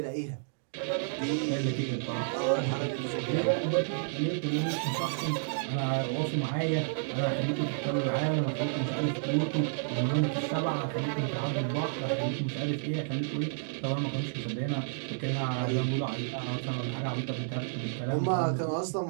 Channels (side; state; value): left; silent; digital silence